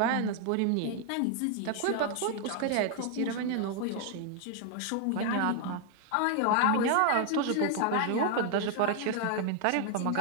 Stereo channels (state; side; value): different; both; correlation 0.00